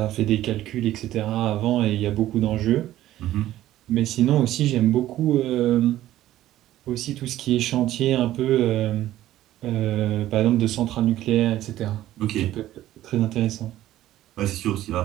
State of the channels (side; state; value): left; quieter; 14.0 dB